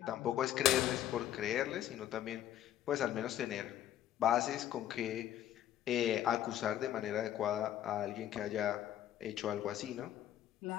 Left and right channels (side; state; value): right; quieter; 11.9 dB